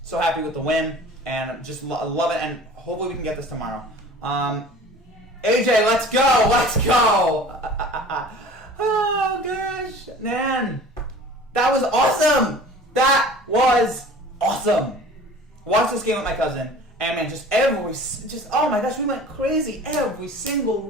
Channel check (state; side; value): normal; both; correlation 0.44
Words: So happy with the win, and just love it. And hopefully we can get this tomorrow. AJ, let's go! Let's go! Oh, gosh. Man. That was awesome! That was awesome! Watched this game with my cousin, and man, oh my gosh, we went crazy. Every single